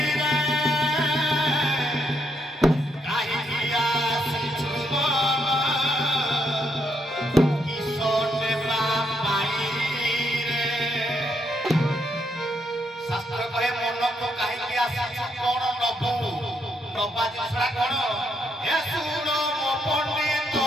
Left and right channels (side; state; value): both; normal; correlation 0.77